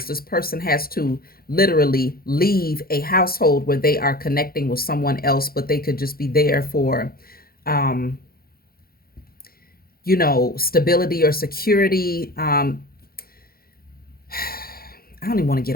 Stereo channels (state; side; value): late; right; 0.44 ms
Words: this person has to literally leave a household where they are connecting with someone else, but they could just be there for, stability or security. I don't even want to get